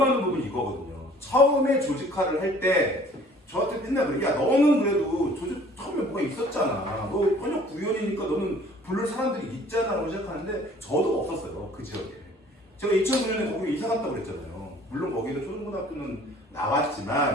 부분이 이거거든요. 처음에 조직화를 할 때 저한테 맨날 그래. 야 너는 그래도 조직 처음에 뭐가 있었잖아. 너 현역 구의원이니까 너는 부를 사람들이 있잖아 라고 시작하는데 저도 없었어요. 그 지역에. 제가 2009년에 거기 이사 갔다고 그랬잖아요. 물론 거기는 초등고등학교는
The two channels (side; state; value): both; normal; correlation 0.53